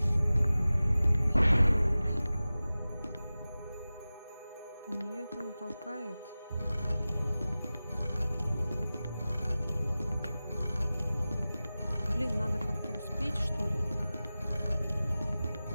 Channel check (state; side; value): inverted; both; correlation -0.97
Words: Офигеть. Нет, она толкает. Блин, надо как-то успеть, что ли?